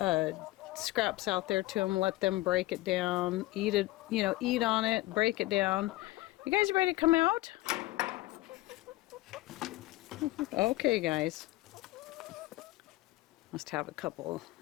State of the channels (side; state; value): right; quieter; 19.0 dB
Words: scraps out there to them, let them break it down, eat it, you know, eat on it, break it down. You guys ready to come out? Okay, guys. Must have a couple